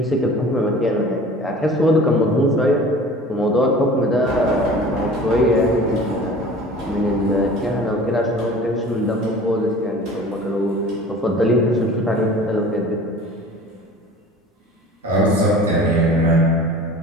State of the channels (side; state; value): both; normal; correlation 0.43